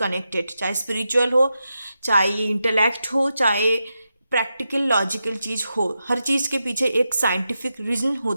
चाहे स्पिरिचुअल हो, चाहे इंटेलेक्ट हो, चाहे प्रैक्टिकल लॉजिकल चीज़ हो. हर चीज़ के पीछे एक साइंटिफिक रीज़न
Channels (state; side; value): inverted; both; correlation -0.88